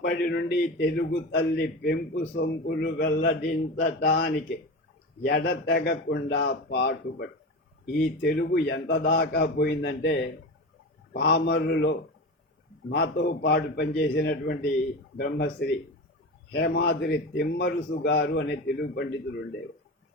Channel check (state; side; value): normal; both; correlation 0.25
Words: నుండి తెలుగు తల్లి పెంపు సొంపులు వెల్లడించటానికి ఎడతెగకుండా పాటుపడి ఈ తెలుగు ఎంత దాకా పోయిందంటే పామరులో మాతో పాటు పనిచేసినటువంటి బ్రహ్మశ్రీ హేమాద్రి తిమ్మరుసు గారు అనే తెలుగు పండితుడు ఉండేవారు.